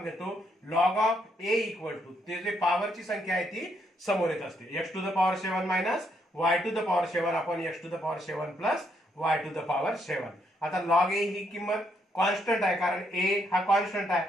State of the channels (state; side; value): normal; both; correlation 0.75